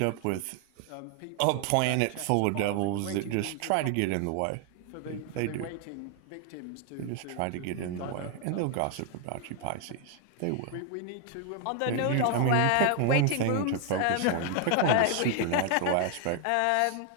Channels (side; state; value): both; different; correlation 0.00